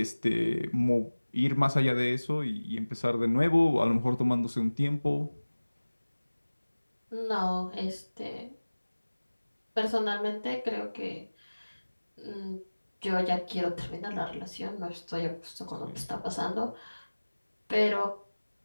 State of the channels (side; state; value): both; inverted; correlation -1.00